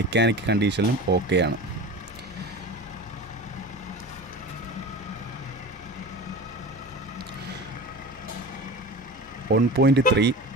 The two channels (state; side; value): normal; both; correlation 0.33